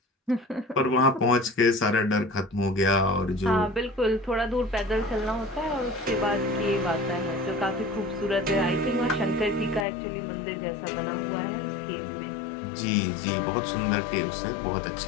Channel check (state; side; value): drops out; right; at 9.9 s